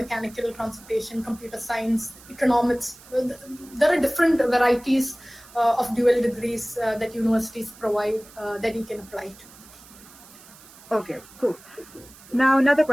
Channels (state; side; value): noise; right; hiss, 22 dB below the sound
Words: transportation, computer science, economics. There are different varieties of dual degrees that universities provide that you can apply to. Okay, cool. Now another